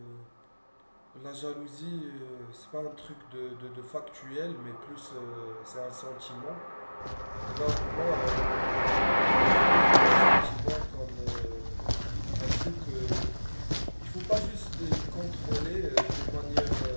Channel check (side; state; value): both; inverted; correlation -1.00